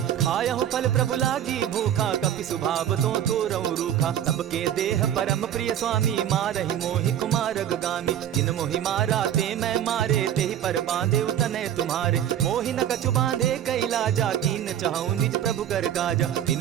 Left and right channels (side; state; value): left; quieter; 10.5 dB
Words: खायहु फल प्रभु लागी भूखा कपि सुभाव तो रहु रूखा सबके देह परम प्रिय स्वामी मारहि मोहि कुमार गामी जिन मोहि मारा ते मैं मारे तेहि पर बांधे उतने तुम्हारे मोहि न कछु बांधे कैलाजा कीन चाहूं निज प्रभु कर काजा